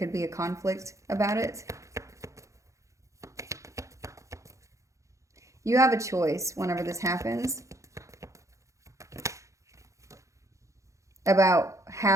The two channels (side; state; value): left; late; 0.15 ms